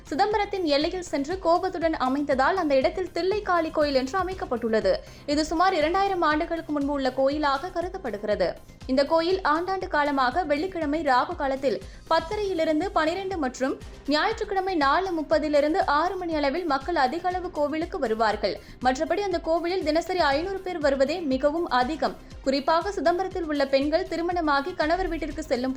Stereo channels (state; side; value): identical; both; correlation 1.00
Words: சிதம்பரத்தின் எல்லையில் சென்று கோபத்துடன் அமைந்ததால் அந்த இடத்தில் தில்லை காளி கோயில் என்று அமைக்கப்பட்டுள்ளது. இது சுமார் 2000 ஆண்டுகளுக்கு முன்பு உள்ள கோயிலாக கருதப்படுகிறது. இந்த கோயில் ஆண்டாண்டு காலமாக வெள்ளிக்கிழமை ராகு காலத்தில் 10:30 12 மற்றும் ஞாயிற்றுக்கிழமை 4:30 6 மணி அளவில் மக்கள் அதிக அளவு கோவிலுக்கு வருவார்கள். மற்றபடி அந்த கோவிலில் தினசரி 500 பேர் வருவதே மிகவும் அதிகம். குறிப்பாக சிதம்பரத்தில் உள்ள பெண்கள் திருமணமாகி கணவர் வீட்டிற்கு செல்லும்